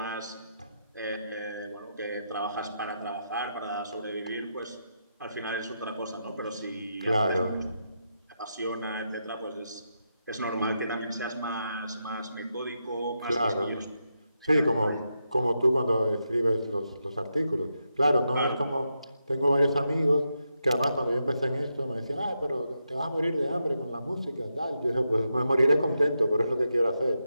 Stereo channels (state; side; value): inverted; both; correlation -0.85